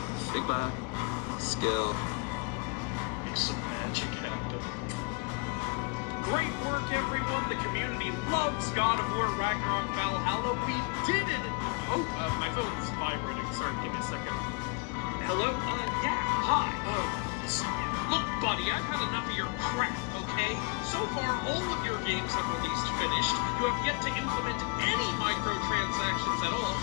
Figma skill. Make some magic happen. Great work, everyone. The community loves God of War Ragnarok Valhalla. We did it. Oh, my phone is vibrating. Sorry, give me a second. Hello? Yeah. Hi. Look, buddy, I've had enough of your crap, okay? So far, all of your games have released finished. You have yet to implement any microtransactions at all,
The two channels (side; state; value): right; quieter; 30.4 dB